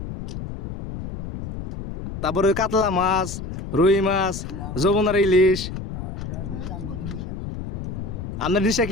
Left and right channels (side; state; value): left; noise; rumble, 7 dB below the sound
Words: তারপরে কাতলা মাছ, রুই মাছ, যমুনার ইলিশ। ওটা বুঝলাম করে নিশা আপনার নিশা